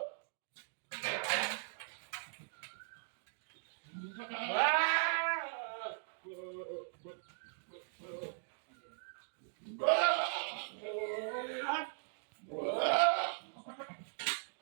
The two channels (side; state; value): left; silent; digital silence